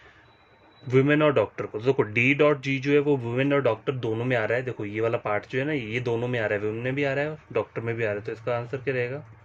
वुमेन और डॉक्टर को। देखो डी डॉट जी जो है वो वुमेन और डॉक्टर दोनों में आ रहा है, देखो ये वाला पार्ट जो है ना, ये दोनों में आ रहा है, वुमेन में भी आ रहा है और डॉक्टर में भी आ रहा है, तो इसका आंसर क्या रहेगा,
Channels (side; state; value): both; identical; correlation 1.00